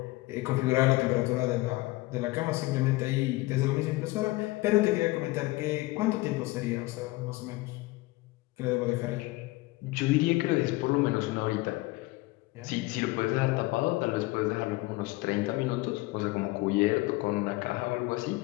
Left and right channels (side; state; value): right; quieter; 20.7 dB